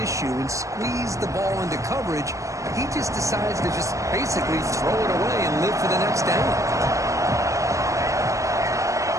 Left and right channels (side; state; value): left; late; 0.15 ms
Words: and squeeze the ball into coverage, he just decides to just basically throw it away and live for the next down.